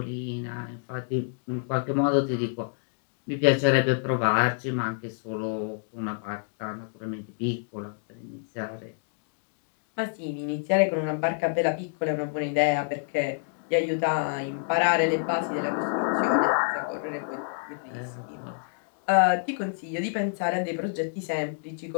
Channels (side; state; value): right; silent; digital silence